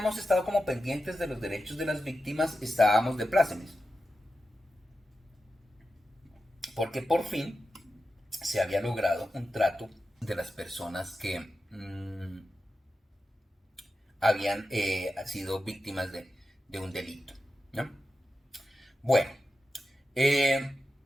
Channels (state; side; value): normal; both; correlation 0.91